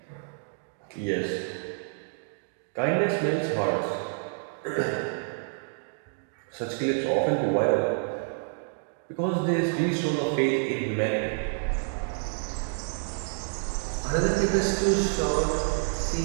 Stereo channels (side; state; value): left; silent; digital silence